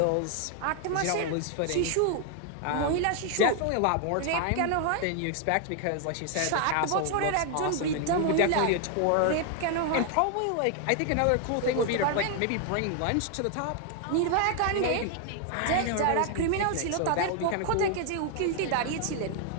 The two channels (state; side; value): different; both; correlation 0.00